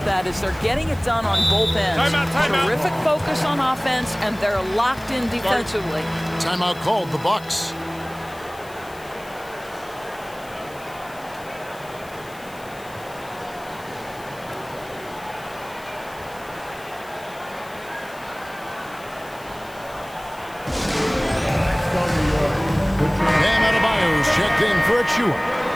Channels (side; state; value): left; noise; hiss, 22 dB below the sound